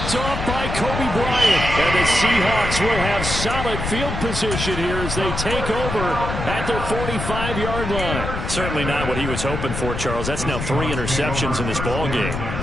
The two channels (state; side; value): noise; left; rumble, 4 dB below the sound